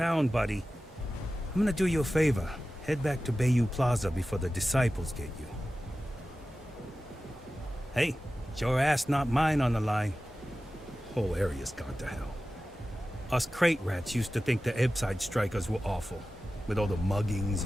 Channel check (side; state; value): both; normal; correlation 0.95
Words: buddy. I'm gonna do you a favor. Head back to Bayou Plaza before the disciples get you. Hey, it's your ass, not mine on the line. Whole area's gone to hell. Us crate rats used to think the Ebbside strikers were awful, with all the muggings